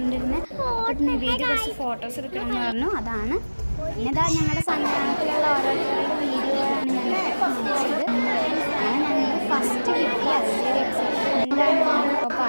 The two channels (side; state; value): both; inverted; correlation -1.00